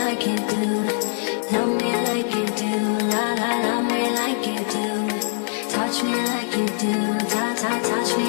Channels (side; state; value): right; silent; 58 dB below the other